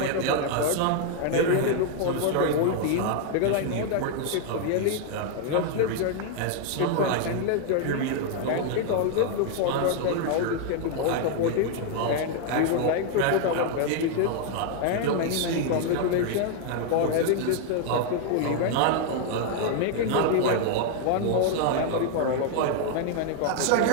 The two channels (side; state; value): both; different; correlation 0.00